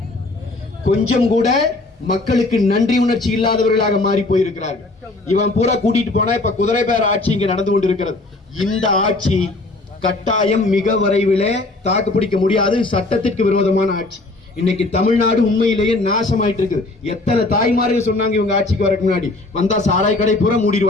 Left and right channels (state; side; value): quieter; right; 3.0 dB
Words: கொஞ்சம் கூட மக்களுக்கு நன்றி உணர்ச்சி இல்லாதவர்களாக மாறி போயிருக்கிறார்கள். இவன் பூரா கூட்டிட்டு போனா இப்ப குதிரை பேர ஆட்சி இங்க நடந்து கொண்டிருக்கிறது. இந்த ஆட்சி கட்டாயம் மிக விரைவிலே தாக்கு பிடிக்க முடியாது. சட்டத்திற்கு விரோதமான ஆட்சி. இன்னைக்கு தமிழ்நாடு உண்மையிலேயே நாசமாயிட்டு இருக்குது. எத்தனை தாய்மார்கள் சொன்னாங்க இவங்க ஆட்சிக்கு வரக்கு முன்னாடி, வந்தா சாராய் கடை பூரா